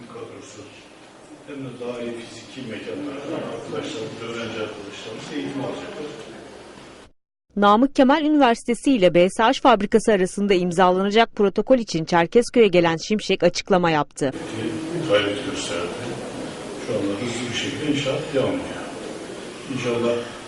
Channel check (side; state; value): both; identical; correlation 1.00